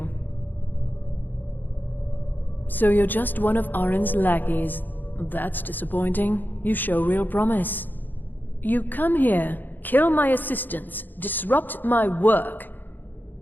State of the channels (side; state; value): right; late; 0.089 ms